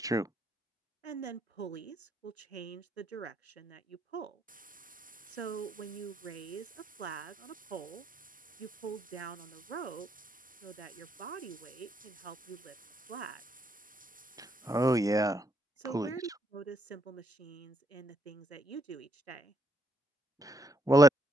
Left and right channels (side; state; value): both; normal; correlation 0.75